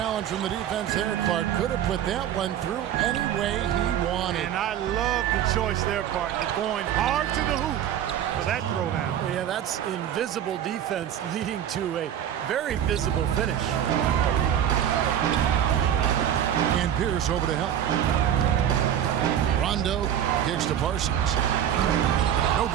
from the defense there. Clark could have put that one through any way he wanted. And I love the choice there, partner, going hard to the hoop for that throwdown. Yeah, that's invisible defense leading to a very visible finish. And Pierce over to help. Rondo kicks to Parsons. No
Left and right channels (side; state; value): left; quieter; 10.1 dB